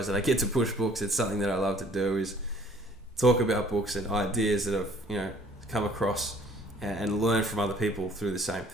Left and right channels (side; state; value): both; normal; correlation 0.56